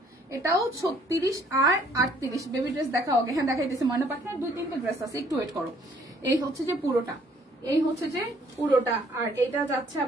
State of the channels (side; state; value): both; normal; correlation 0.62